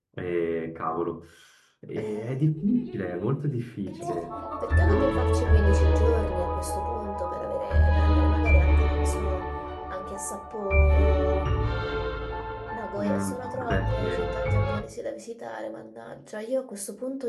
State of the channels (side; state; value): both; identical; correlation 1.00